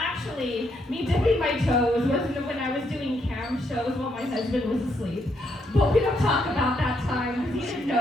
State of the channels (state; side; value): normal; both; correlation 0.76